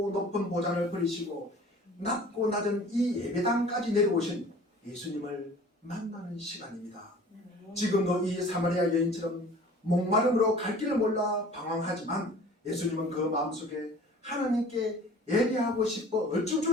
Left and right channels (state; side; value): normal; both; correlation 0.46